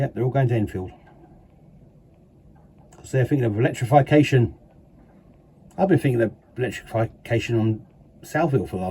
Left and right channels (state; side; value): identical; both; correlation 1.00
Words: they're all going to Enfield. Because they're thinking of electrification. I've been thinking of electrification on Southville for the